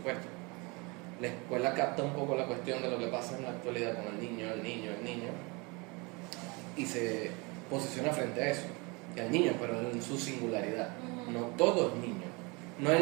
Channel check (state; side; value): quieter; left; 28.1 dB